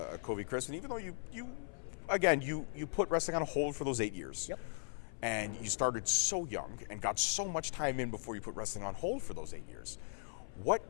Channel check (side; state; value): right; silent; 52 dB below the other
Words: Covey Christ, and even though you put wrestling on hold for those 8 years, and you started so young and got so much time in before you put wrestling on hold for those 8 years,